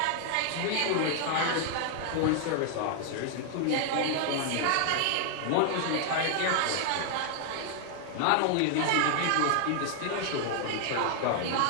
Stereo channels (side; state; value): both; different; correlation 0.00